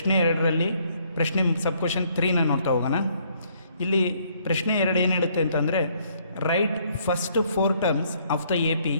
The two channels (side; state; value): both; inverted; correlation -0.66